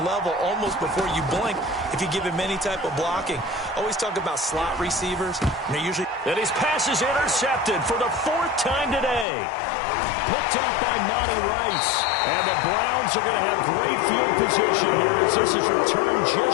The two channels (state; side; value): drops out; right; at 9.2 s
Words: level almost before you blink if you give him any type of blocking. Always talk about slot receivers. And they're usually... And his pass is intercepted for the 4th time today. Picked up by Monty Rice. And the Browns are going to have great field position here as this is returned